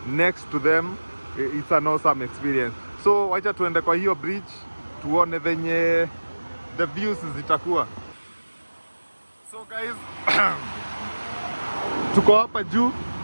next to them, it's an awesome experience. So wacha tuende kwa hiyo bridge tuone venye the views zitakuwa. So guys, tuko hapa juu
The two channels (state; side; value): inverted; both; correlation -1.00